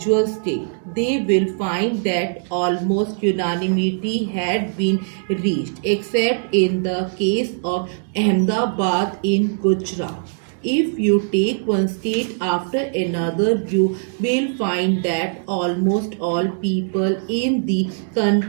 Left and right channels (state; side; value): silent; left; digital silence